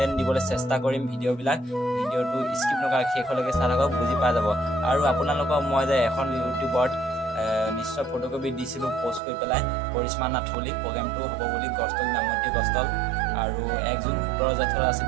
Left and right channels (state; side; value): drops out; left; at 9.2 s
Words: দিবলৈ চেষ্টা কৰিম। ভিডিঅ'টো স্কিপ নকৰাকৈ শেষলৈকে চাই থাকক, বুজি পাই যাব। আৰু আপোনালোকক মই যে এখন ইউটিউবত নিশ্চয় ফটোকপি দিছিলোঁ পষ্ট কৰি পেলাই, কৰিশ্মা নাথ বুলি প্ৰগ্ৰেমটো হ'ব বুলি গছতল নামতি গছতল। আৰু 1 জুন 17 জেঠৰ আছিল